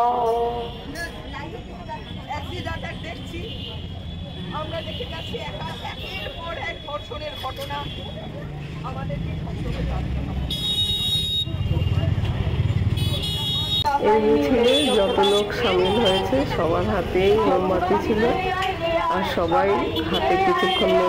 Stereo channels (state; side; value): identical; both; correlation 1.00